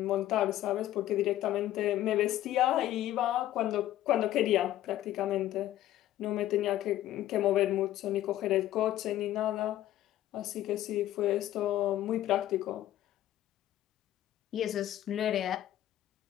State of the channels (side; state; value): right; quieter; 13.5 dB